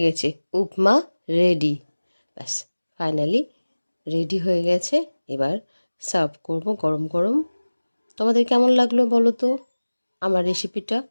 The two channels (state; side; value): inverted; both; correlation -1.00